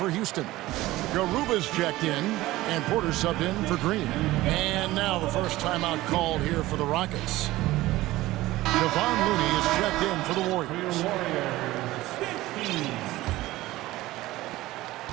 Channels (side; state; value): left; quieter; 17.5 dB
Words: Houston. Garuba's checked in, and Porter subbed in for Green. And now the first timeout called here for the Rockets. Kevon Looney is checked in for the Warriors.